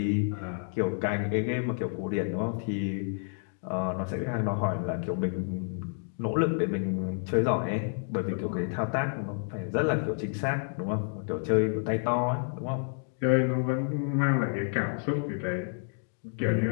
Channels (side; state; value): right; silent; 58 dB below the other